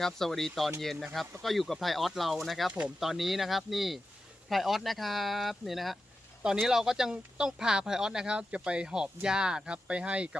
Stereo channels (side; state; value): both; normal; correlation 0.92